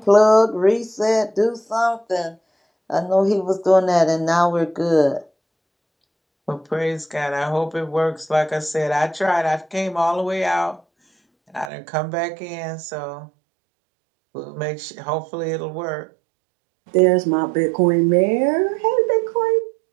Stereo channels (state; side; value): drops out; left; at 11.7 s